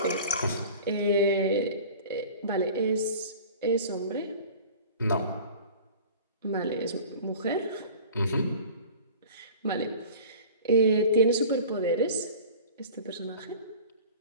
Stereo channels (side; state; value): both; inverted; correlation -0.40